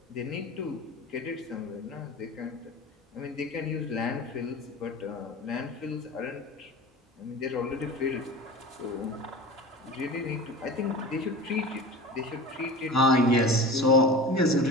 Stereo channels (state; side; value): normal; both; correlation 0.34